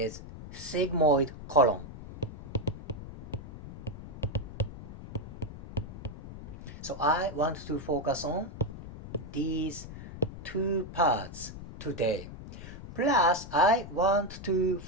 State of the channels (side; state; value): left; noise; rumble, 12 dB below the sound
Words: sigmoid colon. So I want to focus on these two parts today. Plus, I want to